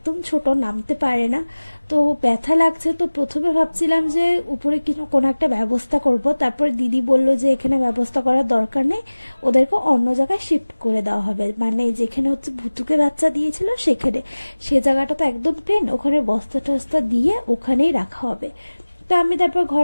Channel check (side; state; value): both; inverted; correlation -1.00